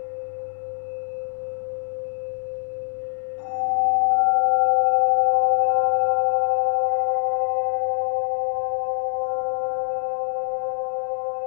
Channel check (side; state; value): right; silent; 63 dB below the other